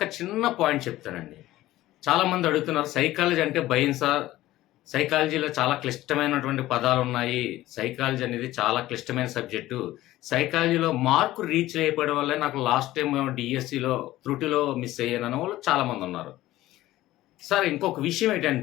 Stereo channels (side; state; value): right; quieter; 15.9 dB